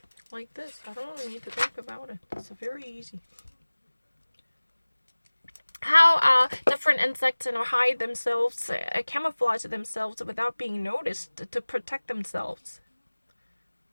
Like this. I don't really need to think about it. It's very easy. How different insects hide themselves, camouflage themselves without being noticed to protect themselves.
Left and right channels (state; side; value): inverted; both; correlation -1.00